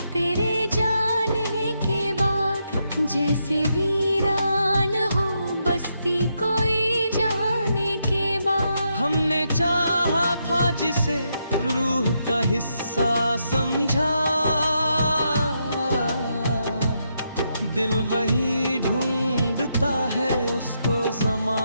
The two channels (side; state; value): both; inverted; correlation -0.81